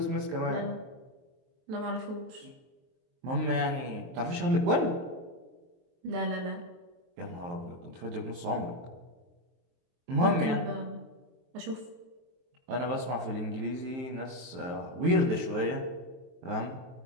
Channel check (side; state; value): left; late; 23 ms